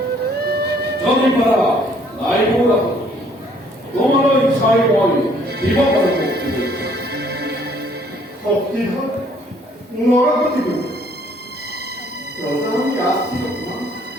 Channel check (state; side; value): normal; both; correlation 0.62